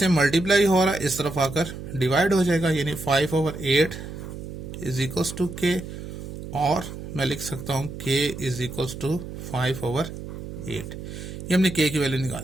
मल्टीप्लाई हो रहा है, इस तरफ आकर डिवाइड हो जाएगा, यानी 5/8 इज इक्वल्स टू के, और मैं लिख सकता हूँ के इज इक्वल्स टू 5/8। ये हमने के की वैल्यू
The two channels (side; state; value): right; noise; hum, 10 dB below the sound